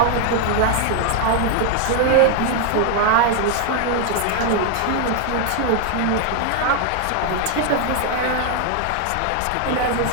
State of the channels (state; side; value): different; both; correlation 0.00